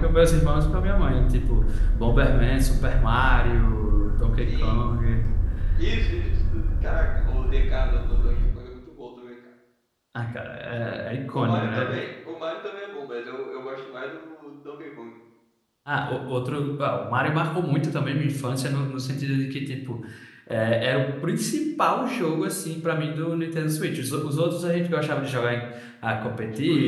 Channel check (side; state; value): both; identical; correlation 1.00